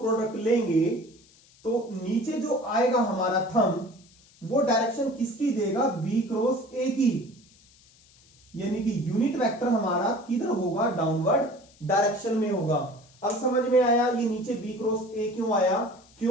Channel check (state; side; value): noise; left; hiss, 28 dB below the sound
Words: लेंगे तो नीचे जो आएगा हमारा थंब वो डायरेक्शन किसकी देगा, बी क्रॉस ए की, यानी कि यूनिट वेक्टर हमारा किधर होगा, डाउनवर्ड डायरेक्शन में होगा। अब समझ में आया ये नीचे बी क्रॉस ए क्यों आया,